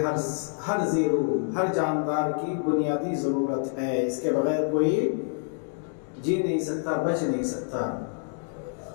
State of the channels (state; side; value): silent; right; 60 dB below the other